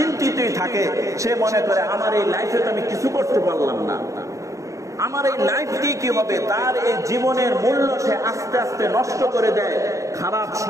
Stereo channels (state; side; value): late; left; 0.15 ms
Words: থাকে। সে মনে করে আমার এই লাইফে তো আমি কিছু করতে পারলাম না, আমার এই লাইফ দিয়ে কি হবে। তার এই জীবনের মূল্য সে আস্তে আস্তে নষ্ট করে দেয় খারাপ